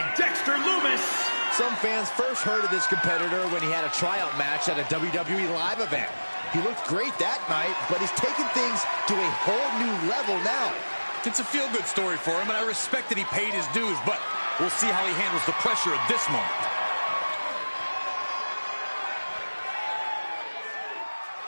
Dexter Lumis. Some fans first heard of this competitor when he had a tryout match at a WWE live event. He looked great that night, but he's taken things to a whole new level now. It's a feel-good story for him, and I respect that he paid his dues, but we'll see how he handles the pressure at this moment.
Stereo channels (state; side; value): inverted; both; correlation -1.00